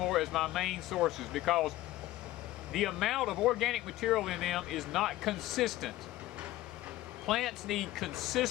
as my main sources because the amount of organic material in them is not consistent. Plants need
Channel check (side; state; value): right; quieter; 16.3 dB